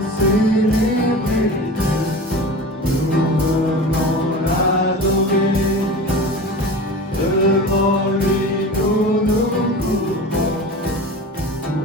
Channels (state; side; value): normal; both; correlation 0.33